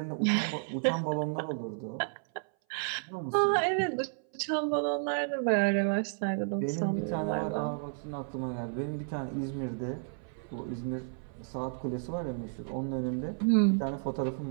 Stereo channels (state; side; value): silent; left; 56 dB below the other